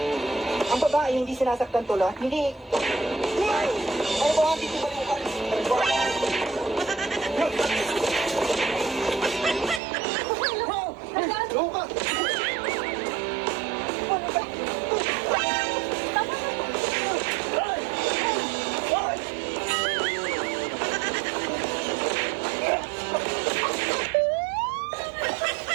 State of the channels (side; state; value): left; drops out; at 9.8 s